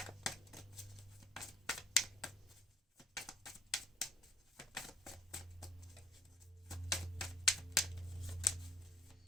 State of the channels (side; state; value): both; normal; correlation 0.56